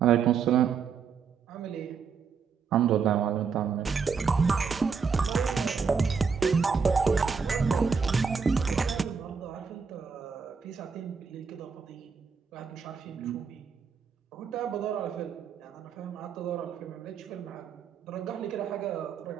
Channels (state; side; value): quieter; left; 6.0 dB